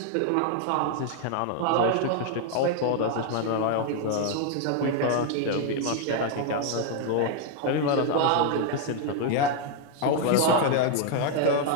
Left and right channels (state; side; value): different; both; correlation 0.00